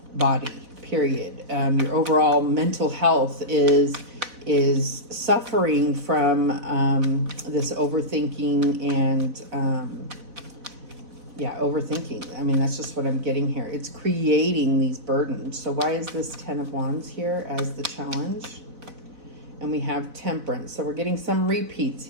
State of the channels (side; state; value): left; late; 4.0 ms